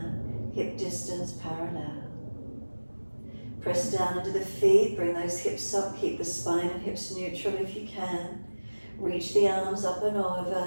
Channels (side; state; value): both; inverted; correlation -1.00